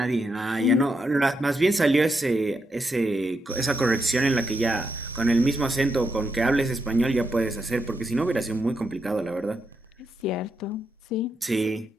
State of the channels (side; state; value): both; normal; correlation 0.82